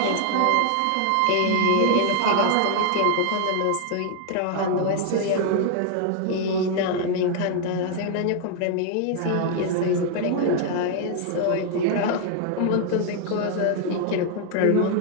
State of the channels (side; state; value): both; different; correlation 0.00